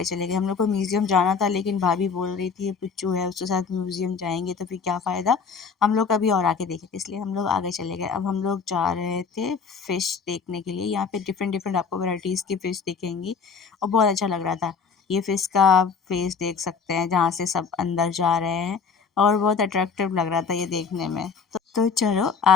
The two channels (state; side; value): quieter; right; 5.6 dB